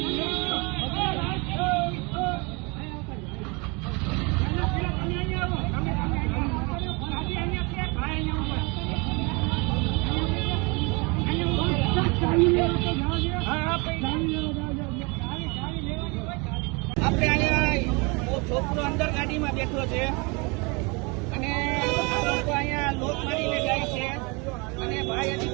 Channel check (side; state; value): left; quieter; 29.1 dB